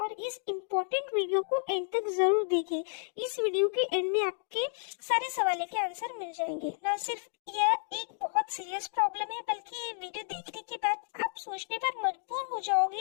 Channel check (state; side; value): silent; right; digital silence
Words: और इस इम्पोर्टेंट वीडियो को एंड तक जरूर देखें। इस वीडियो के एंड में आपके सारे सवालों के आंसर मिल जाएंगे। ना सिर्फ यह एक बहुत सीरियस प्रॉब्लम है बल्कि ये वीडियो देखने के बाद आप सोचने पर मजबूर हो